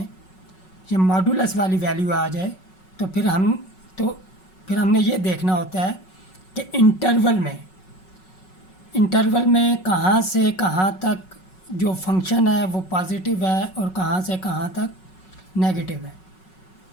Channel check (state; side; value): late; right; 5.4 ms